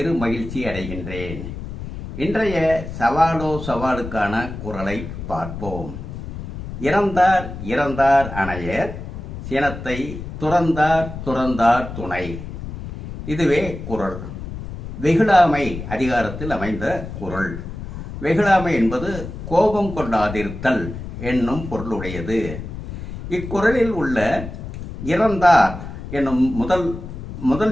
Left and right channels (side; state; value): left; noise; rumble, 9 dB below the sound